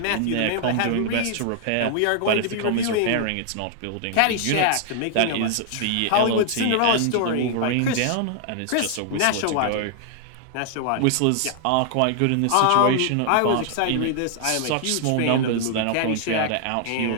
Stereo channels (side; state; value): both; different; correlation 0.00